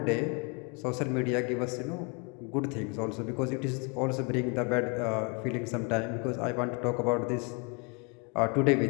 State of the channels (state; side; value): quieter; right; 31.8 dB